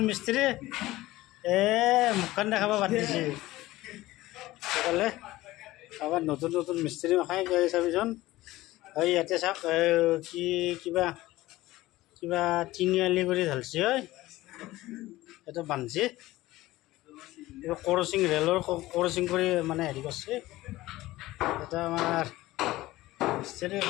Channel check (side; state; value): right; quieter; 17.5 dB